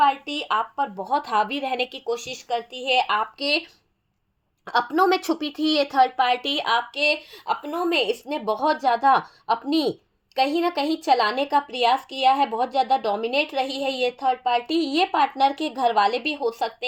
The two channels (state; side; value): identical; both; correlation 1.00